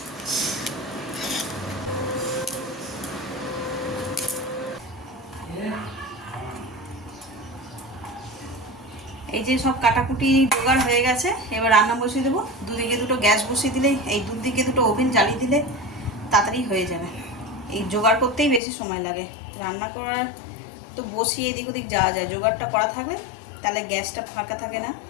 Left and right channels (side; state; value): right; drops out; at 18.6 s